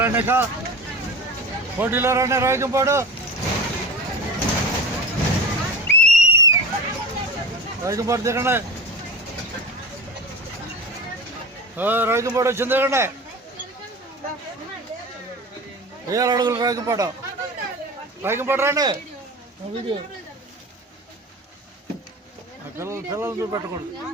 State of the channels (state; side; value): normal; both; correlation 0.31